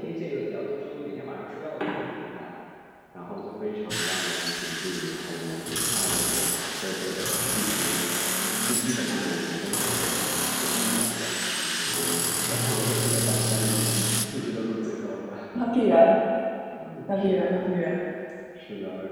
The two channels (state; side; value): identical; both; correlation 1.00